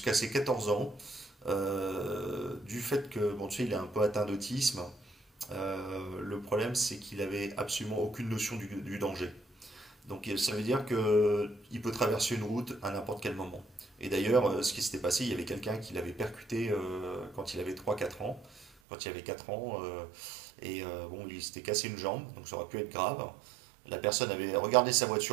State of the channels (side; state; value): left; drops out; at 18.7 s